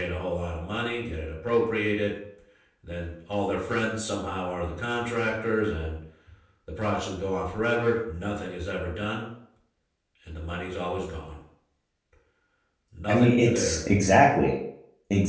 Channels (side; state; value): both; identical; correlation 1.00